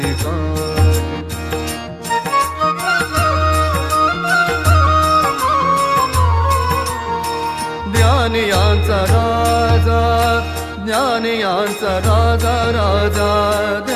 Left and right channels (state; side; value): identical; both; correlation 1.00